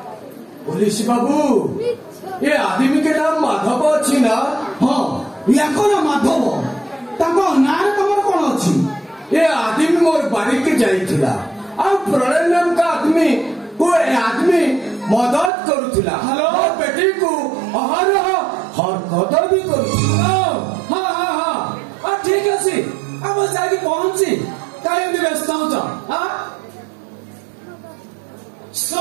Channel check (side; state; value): left; drops out; at 15.5 s